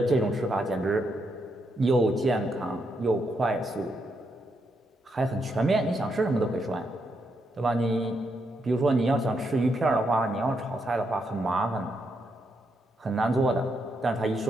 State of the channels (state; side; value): normal; both; correlation 0.80